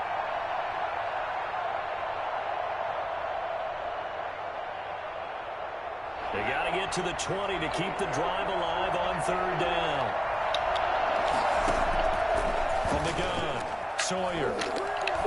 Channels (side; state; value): both; identical; correlation 1.00